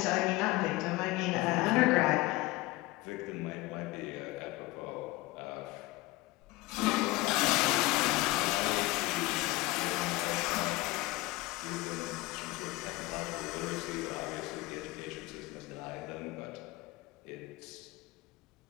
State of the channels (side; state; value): right; quieter; 20.4 dB